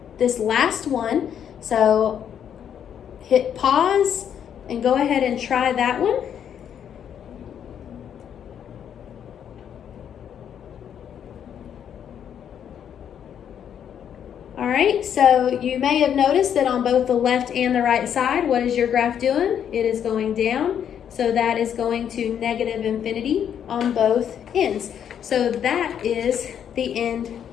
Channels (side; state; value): right; quieter; 8.9 dB